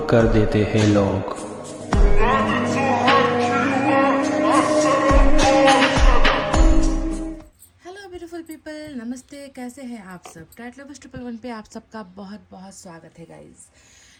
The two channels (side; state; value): both; identical; correlation 1.00